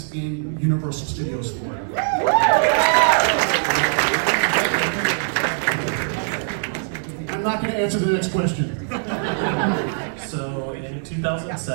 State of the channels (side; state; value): left; silent; digital silence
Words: in Universal Studios Florida. I'm not going to answer the next question. So in